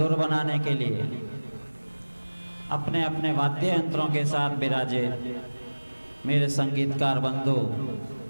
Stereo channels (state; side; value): inverted; both; correlation -1.00